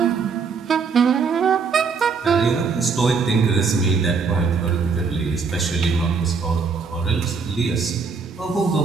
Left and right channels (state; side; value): quieter; left; 5.1 dB